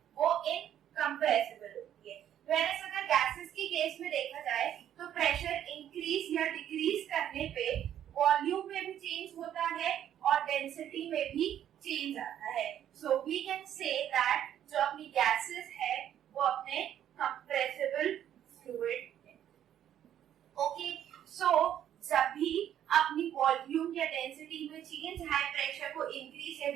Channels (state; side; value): quieter; left; 10.6 dB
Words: वो इनकम्प्रेसिबल होती है। वेयरएज अगर गैसेस की केस में देखा जाए तो प्रेशर इंक्रीज या डिक्रीज करने पे वॉल्यूम में भी चेंज होता है और डेंसिटी में भी चेंज आता है। So we can say that जो अपनी गैसेस है वो अपने कंप्रेसिबल फ्लूइड है। ओके, सो जब भी अपनी वॉल्यूम या डेंसिटी में चेंज हाई प्रेशर को इंक्रीज या